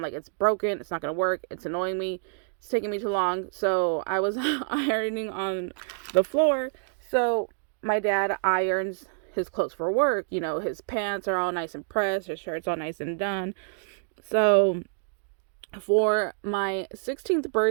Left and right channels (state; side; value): silent; left; digital silence